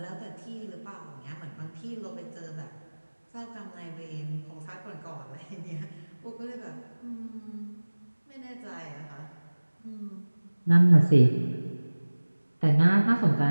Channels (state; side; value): inverted; both; correlation -1.00